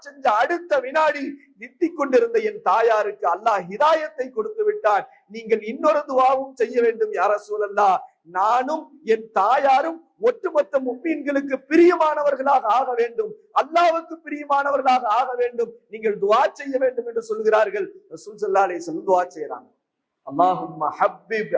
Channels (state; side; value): identical; both; correlation 1.00